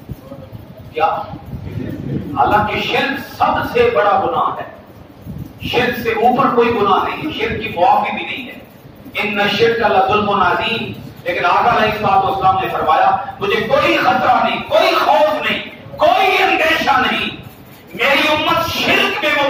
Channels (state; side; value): identical; both; correlation 1.00